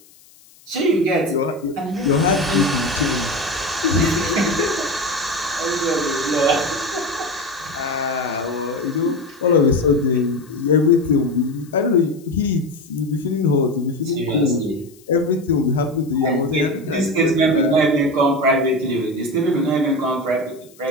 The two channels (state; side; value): noise; left; hiss, 27 dB below the sound